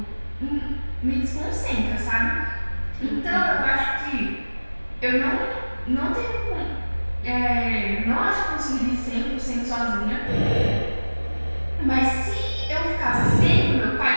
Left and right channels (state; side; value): inverted; both; correlation -1.00